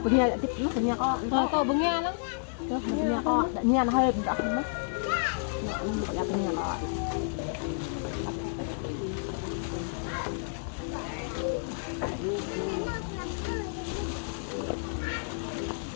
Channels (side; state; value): right; silent; 58 dB below the other